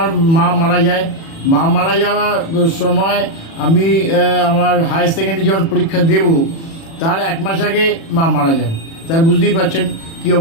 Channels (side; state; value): right; late; 36 ms